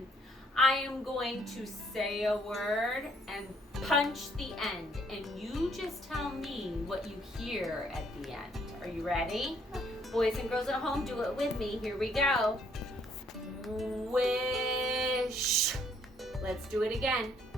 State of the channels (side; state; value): both; normal; correlation 0.66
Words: I am going to say a word and punch the end, and you just tell me what you hear at the end. Are you ready? Boys and girls at home, do it with me. Here we go. Wish. Let's do it again.